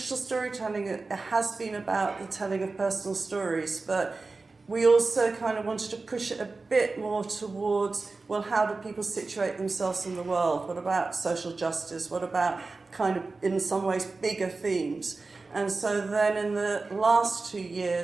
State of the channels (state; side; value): quieter; left; 3.8 dB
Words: storytelling, it has been about the telling of personal stories, but we also kind of wanted to push it a bit more towards, well, how do people situate themselves in the world? What about social justice? What about kind of, in some ways, bigger themes? And so then in the last 2